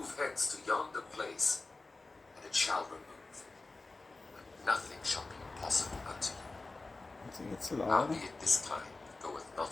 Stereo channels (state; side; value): quieter; right; 3.4 dB